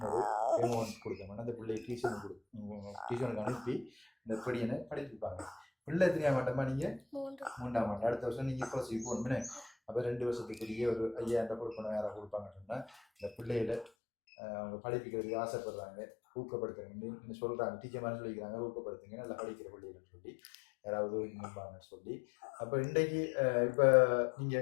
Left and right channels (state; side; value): drops out; right; at 13.9 s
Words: ஒரு அமௌண்ட் கொடுக்கணும். அந்த பிள்ளையை டியூஷனுக்கு அனுப்பி இந்த படியனை படிப்பிப்பாங்க. பிள்ளை எத்தனையா மாட்டோமா? நீங்கள் 3ஆம் ஆண்டு. அடுத்த வருஷம் நீங்கள் +C போகணும்னு. அப்போ 2 வருஷத்துக்குரிய ஒரு 5,000 கொடுக்கணும். யாராவது கொடுப்பாங்கன்னு சொன்னால் இந்த பிள்ளைகளை அவங்க படிப்பிக்கிறதுக்கு ஆசைப்படுறாங்க, ஊக்கப்படுத்துறீங்கன்னு சொல்கிறாங்க. டீச்சர் மாதிரி சொல்லிக்கிறாங்க, ஊக்கப்படுத்துங்க நல்லா படிக்கிற பிள்ளைகள்னு சொல்லி யாராவது நிற்பாங்கன்னு சொல்லி. அப்போ இன்றைக்கு இப்போ